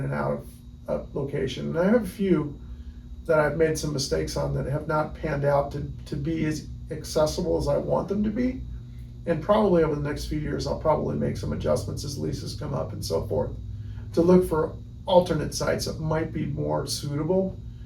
and out of a location. And I have a few that I've made some mistakes on that have not panned out to be as accessible as I want them to be. And probably over the next few years, I'll probably make some adjustments as leases come up and so forth, to look for alternate sites that might be more suitable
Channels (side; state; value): both; identical; correlation 1.00